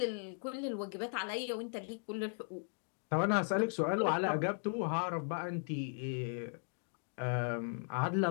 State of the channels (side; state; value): right; silent; 53 dB below the other